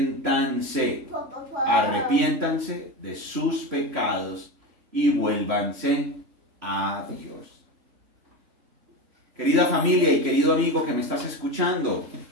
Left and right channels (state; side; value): late; left; 3.0 ms